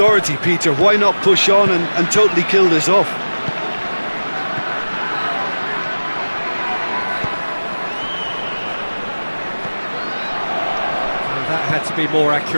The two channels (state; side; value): inverted; both; correlation -1.00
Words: Peter, why not push on and totally kill this off? Well, that had to be more